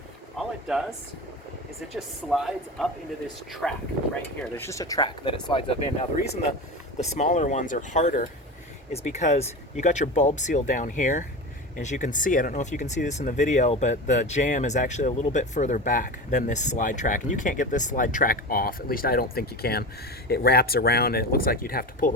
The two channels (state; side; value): normal; both; correlation 0.27